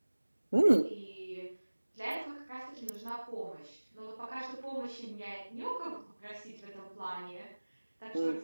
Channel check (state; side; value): inverted; both; correlation -1.00